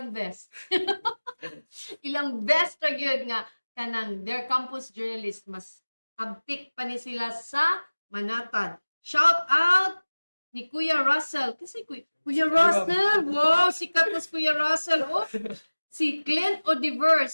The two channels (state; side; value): inverted; both; correlation -1.00